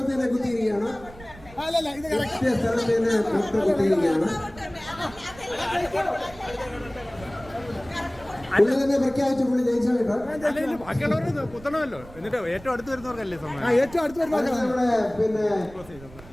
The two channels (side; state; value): right; noise; rumble, 19 dB below the sound